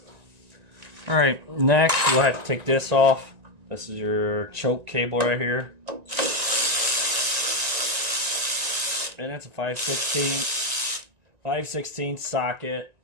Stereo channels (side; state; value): left; late; 1.9 ms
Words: All right, next we'll have to take this off. This is your choke cable right here. And it's a 5/16 socket.